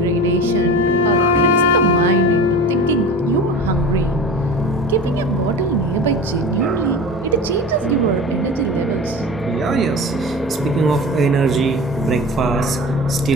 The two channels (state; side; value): normal; both; correlation 0.34